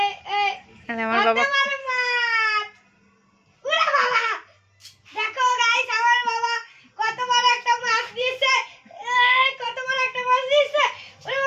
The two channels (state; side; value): identical; both; correlation 1.00